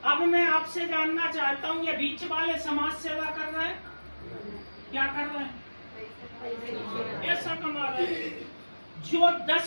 अब मैं आपसे जानना चाहता हूं, ये बीच वाले समाज सेवा कर रहे हैं? क्या कर रहे हैं? ऐसा कमा रहे हैं। जो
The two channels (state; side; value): inverted; both; correlation -1.00